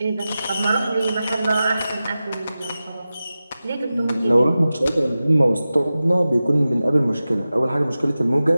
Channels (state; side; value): inverted; both; correlation -0.95